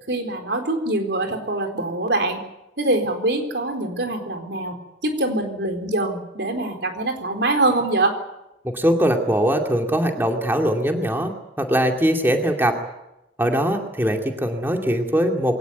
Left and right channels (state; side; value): normal; both; correlation 0.40